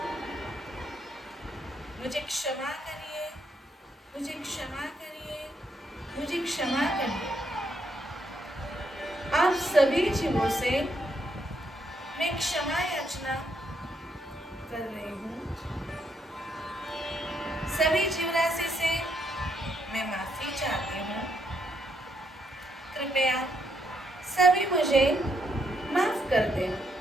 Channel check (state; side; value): normal; both; correlation 0.76